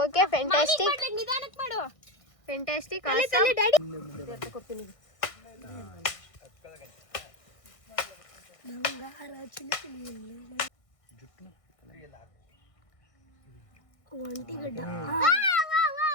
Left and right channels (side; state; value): right; late; 1.6 ms